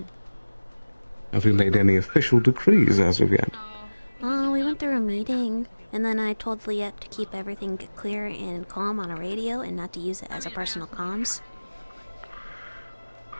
Have you made any official decrees as of yet? Oh, we went through a meeting, and then I told Liette to keep everything clear and calm on a radio and not to use it as a personal comms.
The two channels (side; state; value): both; inverted; correlation -1.00